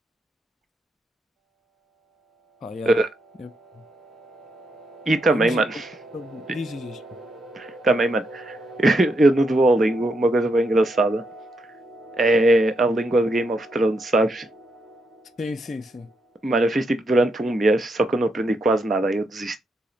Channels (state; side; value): normal; both; correlation 0.80